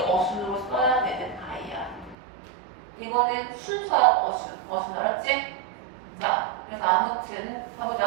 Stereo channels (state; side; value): drops out; left; at 2.1 s